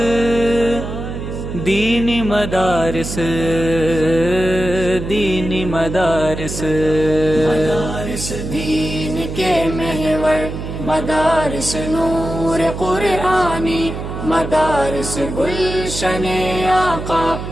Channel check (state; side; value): noise; right; hum, 7 dB below the sound